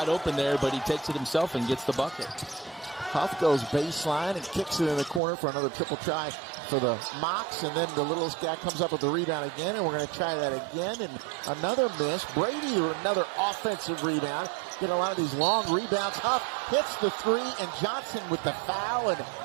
open there, but he takes it himself and gets the bucket. Huff goes baseline and kicks it in the corner for another triple try for the Mocs, and then the littlest guy comes up with the rebound again, and we're going to try that again, and another miss. Brady, another offensive rebound. Get a lot of these long rebounds. Huff hits the 3, and Johnson with the foul, and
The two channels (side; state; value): left; drops out; at 5.2 s